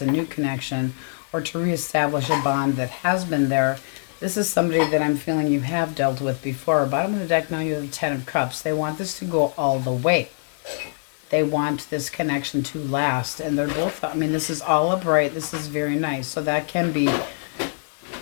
new connection, or to reestablish a bond that has been there. This is somebody that I'm feeling you have dealt with before. Bottom of the deck, now you have the 10 of Cups. They want this to go all the way. They want this connection to last. And they're both, this is all upright. This is very nice. So that can be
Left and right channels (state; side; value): silent; right; digital silence